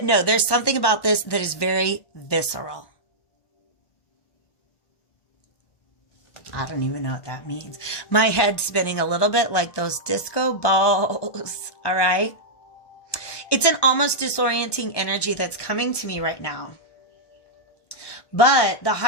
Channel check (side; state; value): right; late; 1.1 ms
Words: no, there's something about this that is very visceral. I don't even know what that means. My head's spinning a little bit like those disco balls. All right. It's an almost disorienting energy that's coming to me right now. But the